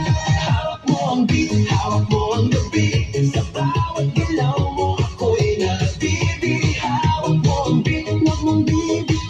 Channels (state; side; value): identical; both; correlation 1.00